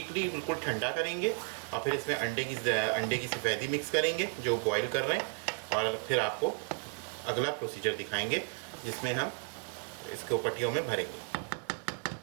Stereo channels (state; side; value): quieter; left; 35.9 dB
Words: बिल्कुल ठंडा करेंगे और फिर इसमें अंडे की सफ़ेदी मिक्स करेंगे जो बॉईल कर रहे हैं, और फिर आपको अगला प्रोसीजर दिखाएंगे जिसमें हम इसको पट्टियों में भरेंगे।